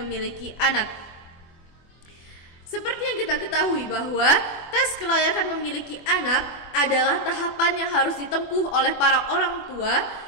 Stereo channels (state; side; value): late; right; 24 ms